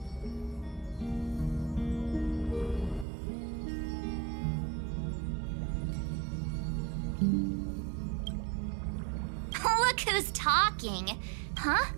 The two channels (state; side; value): drops out; left; at 3.1 s